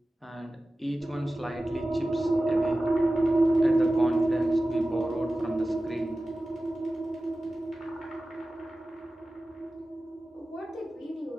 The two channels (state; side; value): normal; both; correlation 0.95